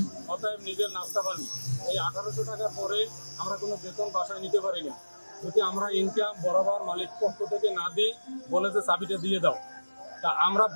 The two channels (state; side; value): inverted; both; correlation -1.00